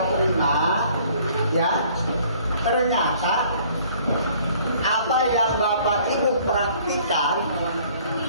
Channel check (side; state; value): both; inverted; correlation -0.57